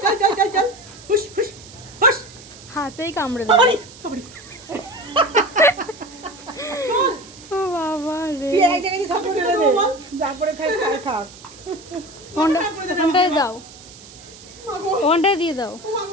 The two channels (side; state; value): right; noise; hiss, 19 dB below the sound